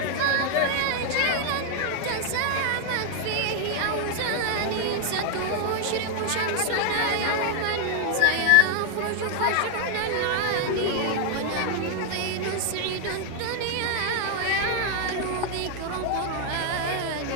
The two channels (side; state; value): both; different; correlation 0.01